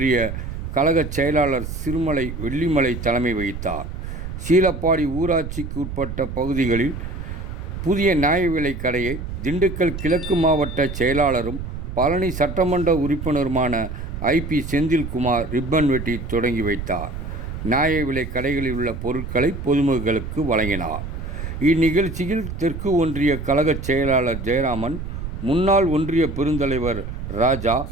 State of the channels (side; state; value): right; noise; rumble, 7 dB below the sound